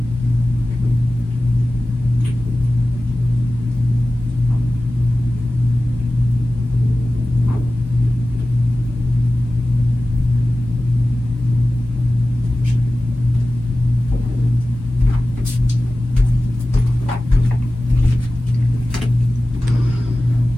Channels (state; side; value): normal; both; correlation 0.96